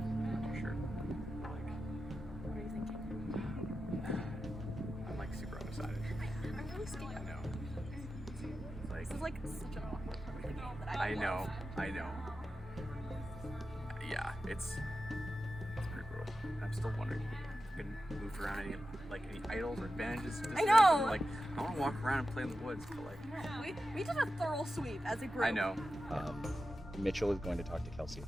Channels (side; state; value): both; normal; correlation 0.91